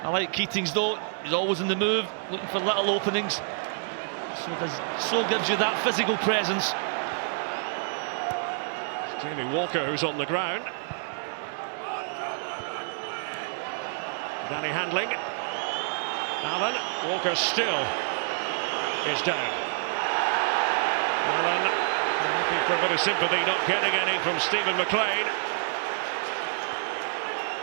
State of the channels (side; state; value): left; silent; digital silence